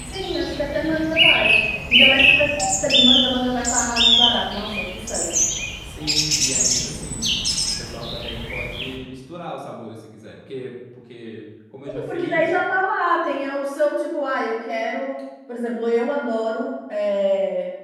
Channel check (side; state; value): both; identical; correlation 1.00